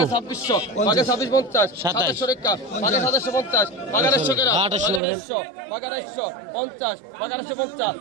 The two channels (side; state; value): left; drops out; at 5.0 s